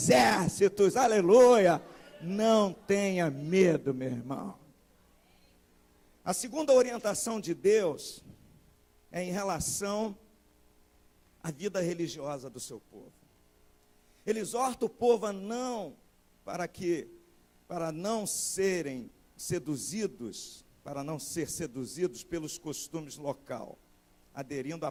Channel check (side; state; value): both; identical; correlation 1.00